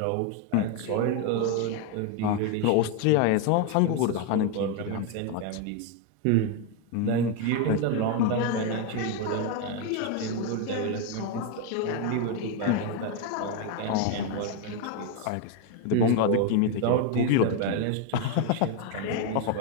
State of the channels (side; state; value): both; different; correlation 0.01